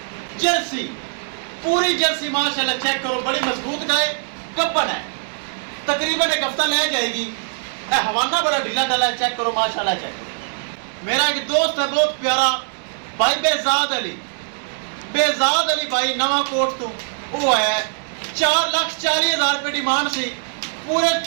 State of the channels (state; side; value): silent; left; digital silence